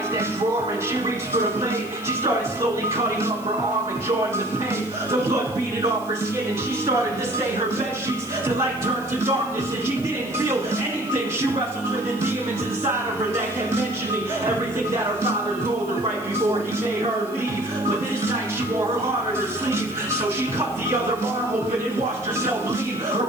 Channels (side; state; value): right; noise; hiss, 21 dB below the sound